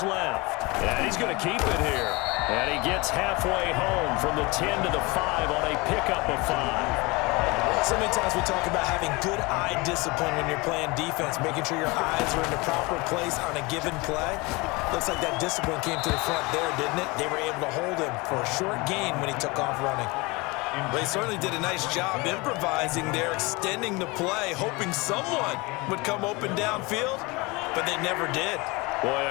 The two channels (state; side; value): quieter; right; 25.1 dB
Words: left. And he's going to keep it here. And he gets halfway home from the 10 to the 5 on a pickup of 5. So many times we talk about having good eye discipline when you're playing defense, making sure your eyes are in the proper place on a given play. Looks like that discipline came to the front there, didn't it? They were able to hold him for a short gain when he took off running. But he certainly did a nice job improvising there, extending the play, hoping someone would come open downfield, but they never did. Boy,